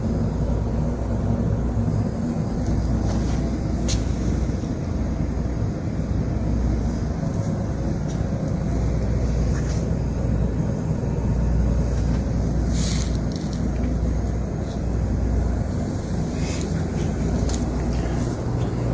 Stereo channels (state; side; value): identical; both; correlation 1.00